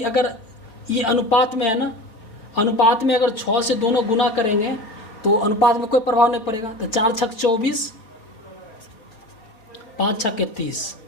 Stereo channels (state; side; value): late; right; 4.6 ms